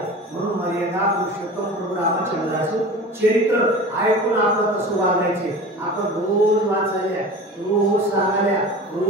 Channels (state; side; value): normal; both; correlation 0.36